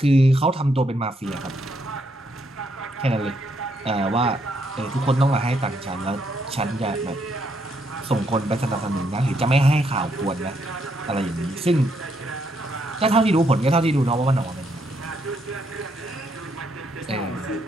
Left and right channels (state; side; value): normal; both; correlation 0.75